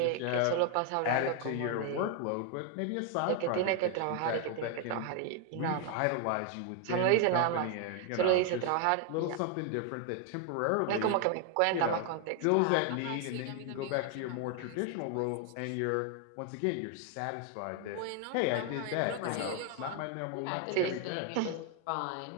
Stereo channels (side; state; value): both; different; correlation 0.00